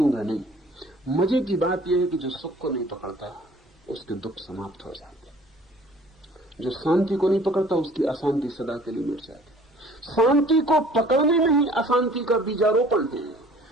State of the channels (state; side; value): normal; both; correlation 0.52